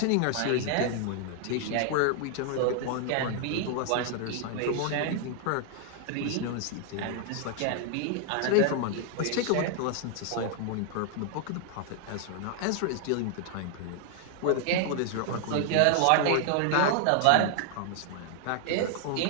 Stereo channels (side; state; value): both; different; correlation 0.00